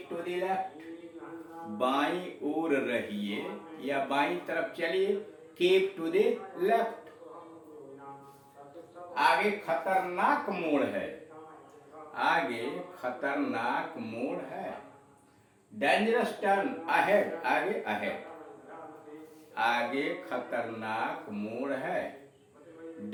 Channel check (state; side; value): identical; both; correlation 1.00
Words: टू द लेफ्ट, बाईं ओर रहिए या बाईं तरफ चलिए, कीप टू द लेफ्ट। आगे खतरनाक मोड़ है, आगे खतरनाक मोड़ है। डेंजरस टर्न अहेड, आगे अहेड, आगे खतरनाक मोड़ है।